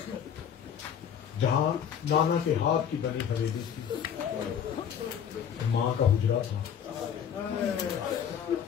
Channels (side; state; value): right; quieter; 8.4 dB